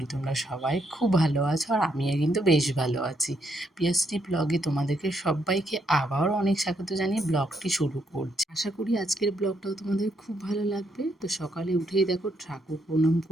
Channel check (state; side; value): normal; both; correlation 0.75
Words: তোমরা সবাই খুব ভালো আছো, আর আমিও কিন্তু বেশ ভালো আছি। পিয়াসটি ব্লগে তোমাদেরকে সবাইকে আবার অনেক স্বাগত জানিয়ে ব্লগটি শুরু করছি। আশা করি আজকের ব্লগটাও তোমাদের খুব ভালো লাগবে। তো সকালে উঠেই দেখো ঠাকুর প্রণাম